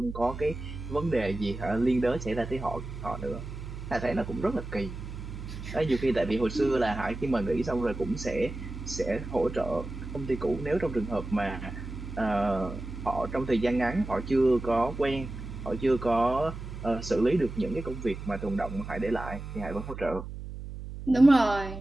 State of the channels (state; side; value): noise; right; hum, 9 dB below the sound